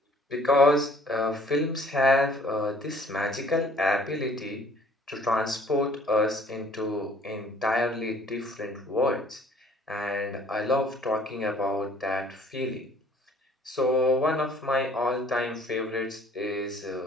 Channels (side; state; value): both; normal; correlation 0.56